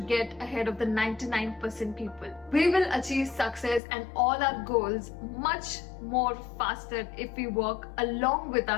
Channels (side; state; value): right; drops out; at 3.8 s